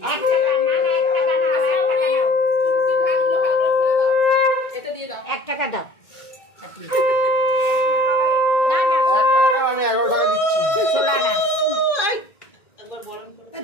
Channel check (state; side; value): late; right; 1.9 ms